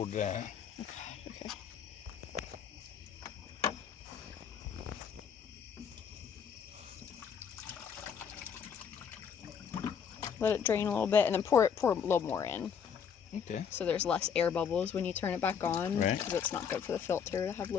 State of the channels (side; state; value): right; quieter; 7.3 dB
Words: that. Okay. Let it drain a little bit and then pour a little more in. Okay. So there's less air bubbles when you turn it back on. Right. Because it's not good for the filter to have